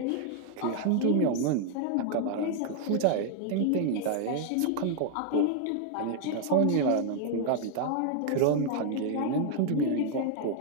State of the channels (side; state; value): both; different; correlation 0.00